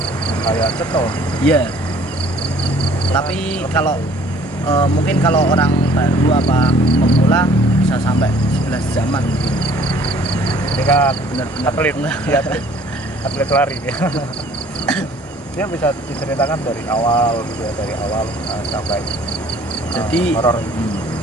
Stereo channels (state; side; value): normal; both; correlation 0.55